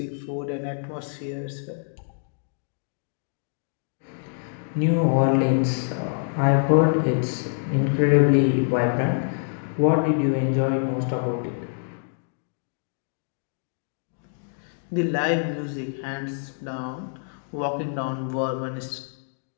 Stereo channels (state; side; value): silent; right; digital silence